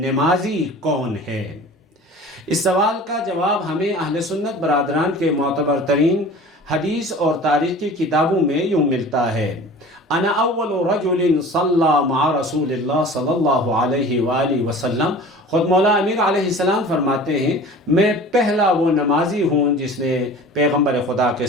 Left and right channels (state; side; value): normal; both; correlation 0.41